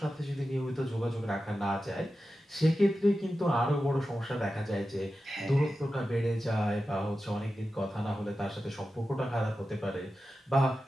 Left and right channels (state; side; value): normal; both; correlation 0.92